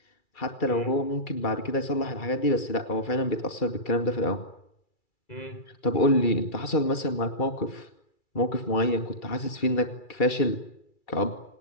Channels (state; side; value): late; right; 2.3 ms